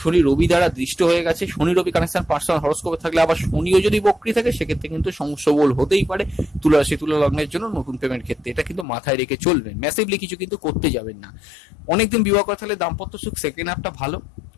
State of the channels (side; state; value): right; drops out; at 8.8 s